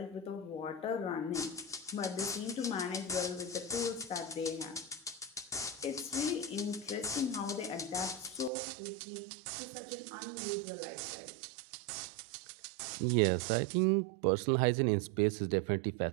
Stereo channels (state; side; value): drops out; left; at 8.5 s